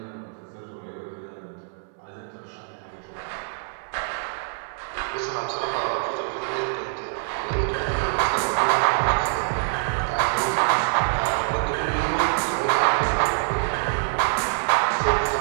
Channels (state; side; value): silent; left; digital silence